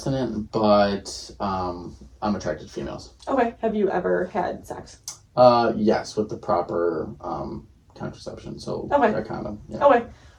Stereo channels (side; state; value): both; identical; correlation 1.00